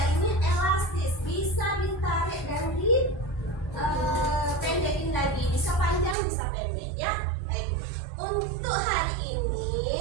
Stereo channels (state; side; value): drops out; left; at 6.2 s